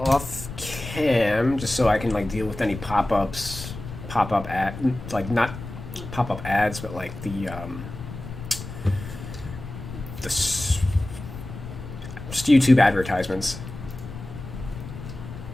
cam, just so I can like deal with any pop-ups, pop-up ad, like not pop-up ads, but like the just YouTube advertisements.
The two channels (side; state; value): left; noise; rumble, 11 dB below the sound